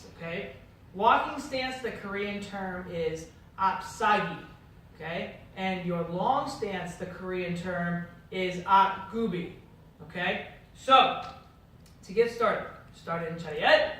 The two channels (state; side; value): identical; both; correlation 1.00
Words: okay? Walking stance, the Korean term is apsagi, okay? And your long stance, the Korean term is apgubi, okay? So, to get started, start in chariot,